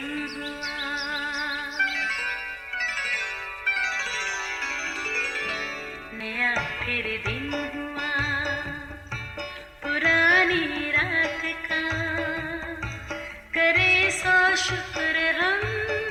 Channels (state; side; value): identical; both; correlation 1.00